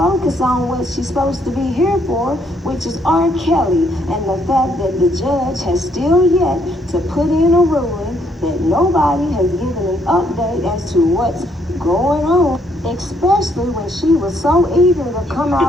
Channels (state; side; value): normal; both; correlation 0.70